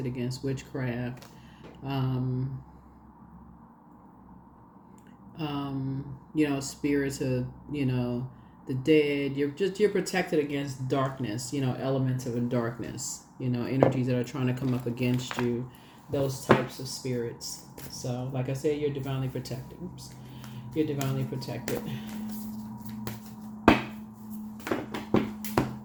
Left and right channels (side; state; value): both; identical; correlation 1.00